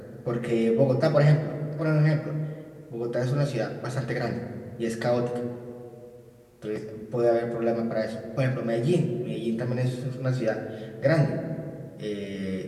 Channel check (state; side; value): identical; both; correlation 1.00